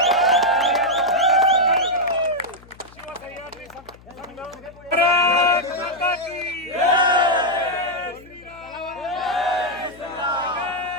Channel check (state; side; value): noise; left; hum, 24 dB below the sound